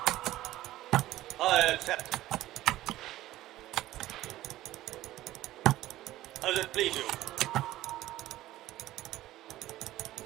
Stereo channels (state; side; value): quieter; left; 15.4 dB